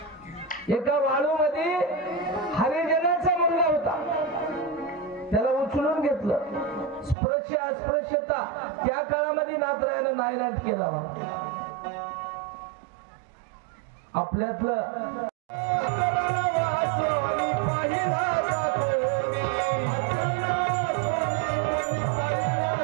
एका वाळूमध्ये हरिजनाचा मुलगा होता, त्याला उचलून घेतलं. स्पर्श अस्पृश्यता त्या काळामध्ये नाथरायानं नायनाट केला. आपल्यातलं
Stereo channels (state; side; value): drops out; left; at 7.2 s